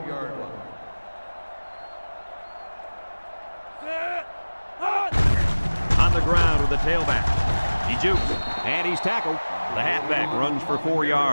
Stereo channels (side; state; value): both; inverted; correlation -1.00